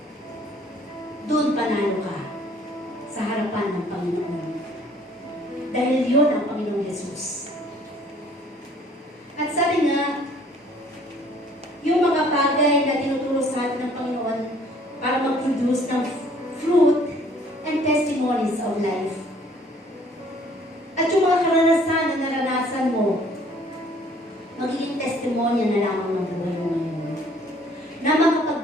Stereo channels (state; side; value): normal; both; correlation 0.58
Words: Doon panalo ka sa harapan ng Panginoon. Dahil yun ang Panginoong Jesus. At sabi nga, sa atin ng Panginoon para mag-produce ng fruit and testimonies of life. At yung mga karanasan na naranasan mo, magiging testimonya na lamang ng buhay mo ngayon. Na